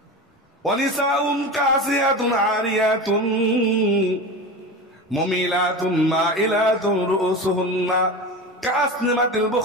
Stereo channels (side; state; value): both; normal; correlation 0.27